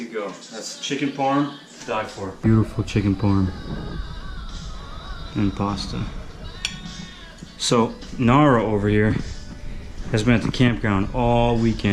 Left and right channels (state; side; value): identical; both; correlation 1.00